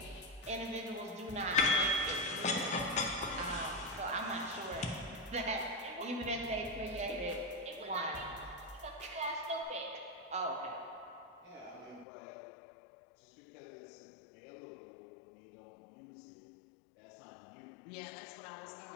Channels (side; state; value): right; drops out; at 12.1 s